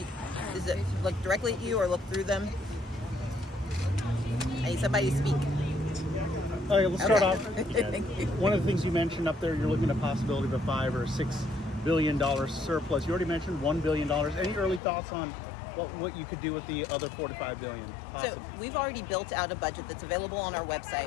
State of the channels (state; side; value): drops out; right; at 14.8 s